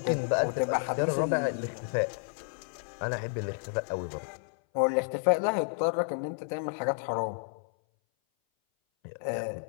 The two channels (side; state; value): right; silent; 57 dB below the other